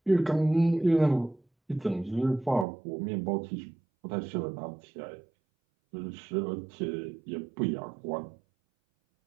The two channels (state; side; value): drops out; left; at 2.7 s